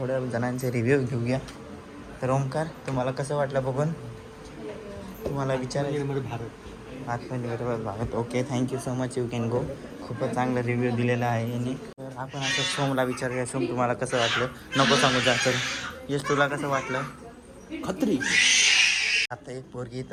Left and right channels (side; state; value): both; identical; correlation 1.00